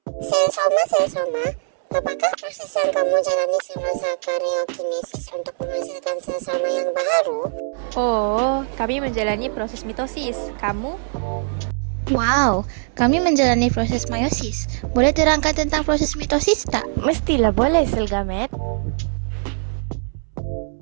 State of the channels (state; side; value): silent; left; 65 dB below the other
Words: Selgamet. Sel soma. Apakah proses yang kamu jalani semasa karyokinesis untuk menghasilkan sel soma yang baru? Oh, kami menjalani proses mitosis. Kamu? Wow, kami menjalani proses meiosis. Boleh terangkan tentang proses mitosis tak? Mestilah boleh Selgamet.